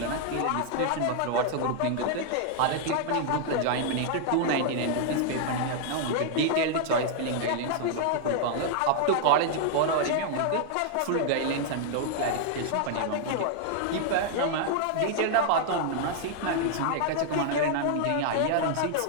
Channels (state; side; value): different; both; correlation -0.01